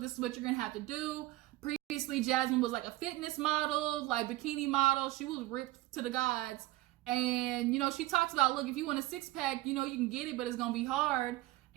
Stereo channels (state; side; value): quieter; left; 17.9 dB